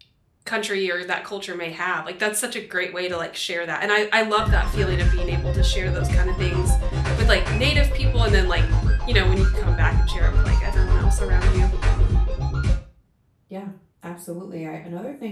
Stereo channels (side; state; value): both; identical; correlation 1.00